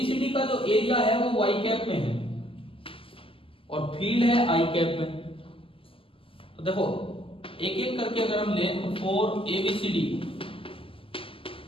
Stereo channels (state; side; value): late; right; 0.26 ms